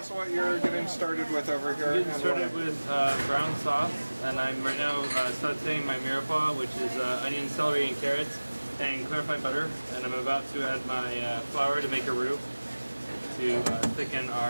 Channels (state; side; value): inverted; both; correlation -1.00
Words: what you're getting started with over here. Getting started with brown sauce, and I'm right now sauteing my mirepoix, which is onion, celery, and carrots, and clarified butter. And I'm about to add my flour to make a roux to thicken